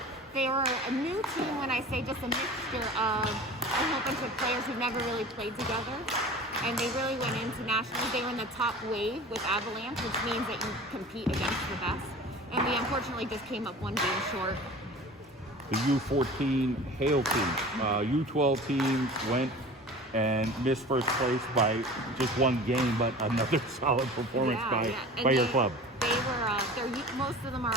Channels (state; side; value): normal; both; correlation 0.39